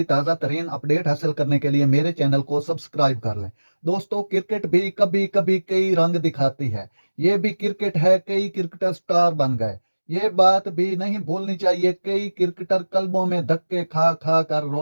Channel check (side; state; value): both; inverted; correlation -1.00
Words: ताज़ा तरीन अपडेट हासिल करने के लिए मेरे चैनल को सब्सक्राइब कर लें। दोस्तों, क्रिकेट भी कभी कभी कई रंग दिखाती है। ये भी क्रिकेट है, कई क्रिकेटर स्टार बन गए। ये बात भी नहीं भूलनी चाहिए, कई क्रिकेटर क्लबों में धक्के खा खा कर